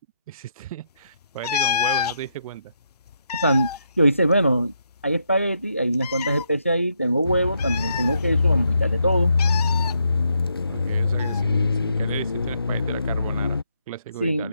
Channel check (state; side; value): inverted; both; correlation -0.78